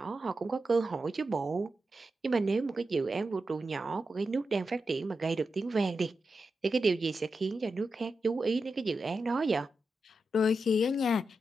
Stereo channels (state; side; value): normal; both; correlation 0.89